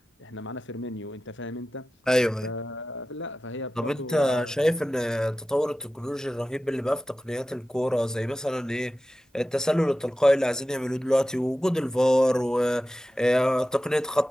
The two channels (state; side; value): normal; both; correlation 0.94